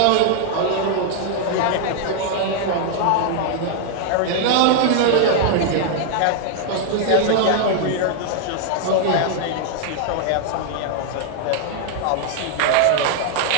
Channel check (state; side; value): different; both; correlation 0.00